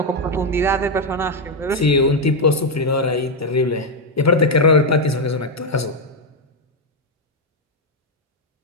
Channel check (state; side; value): normal; both; correlation 0.03